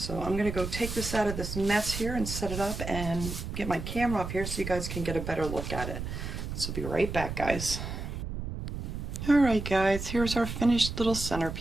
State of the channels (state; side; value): noise; right; rumble, 6 dB below the sound